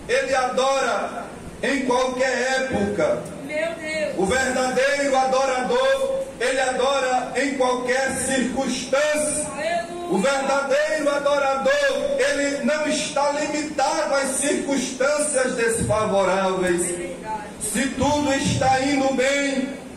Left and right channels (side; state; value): both; identical; correlation 1.00